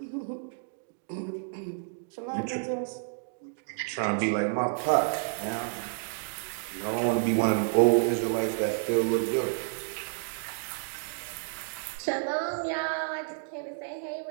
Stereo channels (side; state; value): left; silent; digital silence